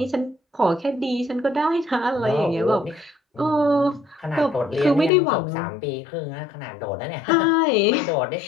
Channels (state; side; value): drops out; right; at 5.1 s